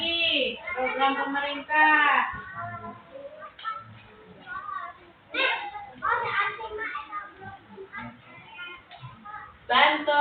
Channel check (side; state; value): both; identical; correlation 1.00